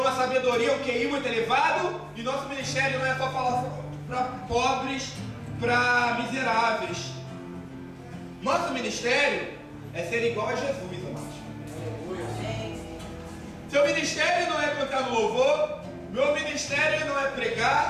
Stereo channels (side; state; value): both; identical; correlation 1.00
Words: sabedoria, um QI muito elevado, e nosso ministério não é só falar para pobres, para miseráveis. Nosso ministério é ser igual a Jesus, amados. Seu ministério não é cantar no louvor, meu ministério não é